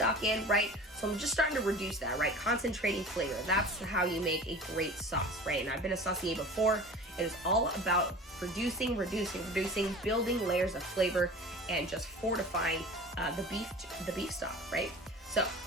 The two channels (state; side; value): normal; both; correlation 0.39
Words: in, right? So I'm just starting to reduce that, right? Concentrating flavor. That's how you make a great sauce, right? And I've been a saucier before. It is all about reducing, building layers of flavor, and just fortifying the beef stock, right? So